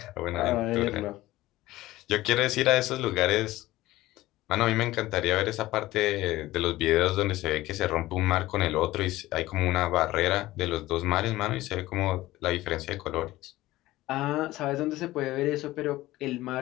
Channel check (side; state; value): right; quieter; 17.1 dB